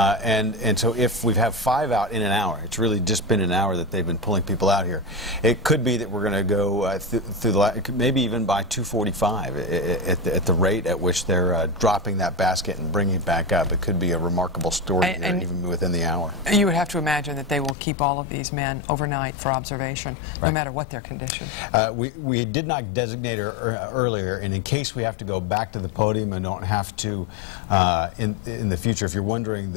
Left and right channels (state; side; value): drops out; right; at 17.8 s